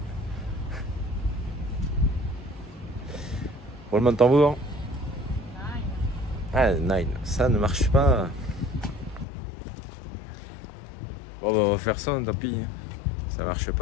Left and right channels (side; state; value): right; drops out; at 9.2 s